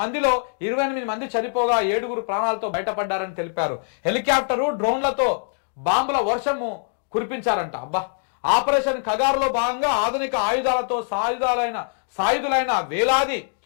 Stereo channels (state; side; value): silent; right; digital silence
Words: మందిలో 28 మంది చనిపోగా 7గురు ప్రాణాలతో బయటపడ్డారని తెలిపారు. హెలికాప్టరు, డ్రోన్లతో బాంబుల వర్షము కురిపించారంట. ఆపరేషన్ కగారులో భాగంగా ఆధునిక ఆయుధాలతో సాయుధులైన వేలాది